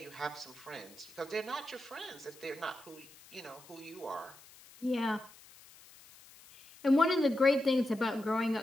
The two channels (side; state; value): left; noise; hiss, 22 dB below the sound